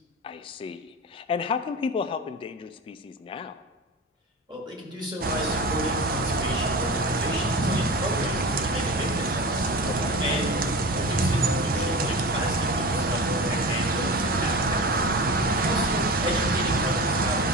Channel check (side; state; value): both; normal; correlation 0.30